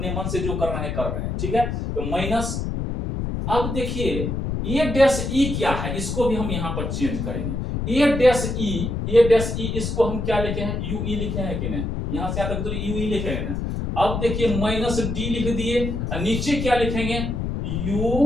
मन से जो कर रहे हैं कर रहे हैं, ठीक है। तो माइनस, अब देखिए ए डैश ई क्या है, इसको भी हम यहाँ पर चेंज करेंगे। ए डैश ई, इसको हम क्या लिखे हैं? यूई लिखे हैं कि नहीं? यहाँ से आता दूरी यूई लिखे हैं ना। अब देखिए माइनस डी लिख दिए, नीचे क्या लिखेंगे,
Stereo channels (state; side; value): noise; left; rumble, 3 dB below the sound